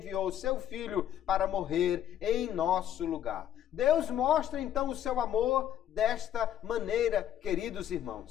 o seu Filho para morrer em nosso lugar. Deus mostra então o seu amor desta maneira, queridos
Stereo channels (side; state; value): right; quieter; 10.6 dB